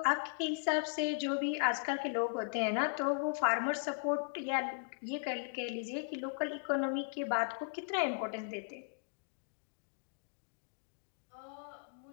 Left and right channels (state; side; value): silent; right; digital silence